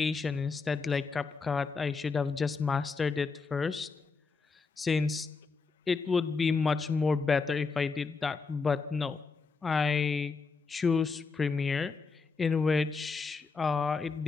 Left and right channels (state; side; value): quieter; right; 4.7 dB